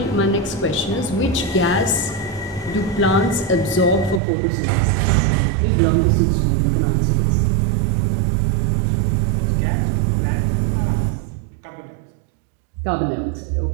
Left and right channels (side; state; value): left; drops out; at 4.2 s